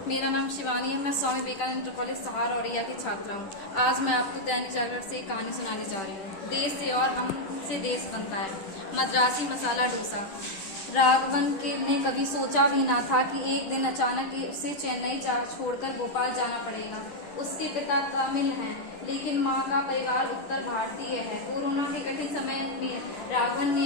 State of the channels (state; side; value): late; right; 10 ms